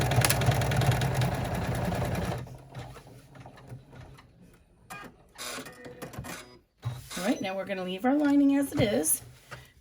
All right, now we're going to leave our lining as it is.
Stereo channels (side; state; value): both; identical; correlation 1.00